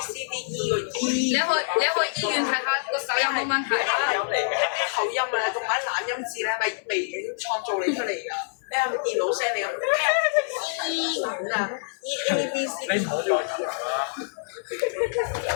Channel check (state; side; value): silent; right; 60 dB below the other